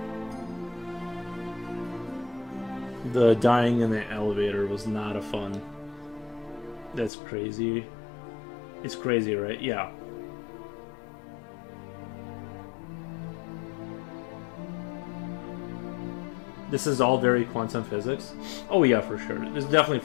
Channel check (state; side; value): drops out; right; at 7.1 s